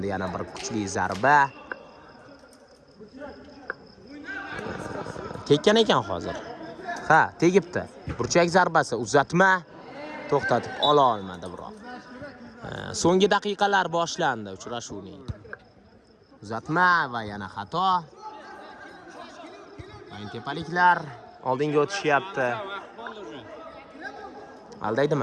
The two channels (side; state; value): both; identical; correlation 1.00